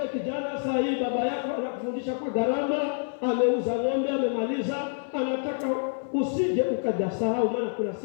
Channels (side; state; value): right; silent; 57 dB below the other